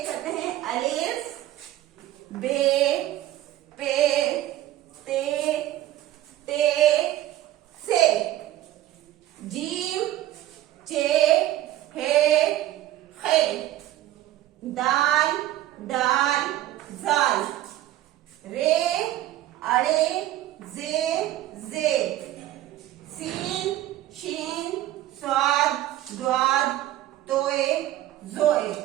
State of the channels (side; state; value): left; quieter; 14.1 dB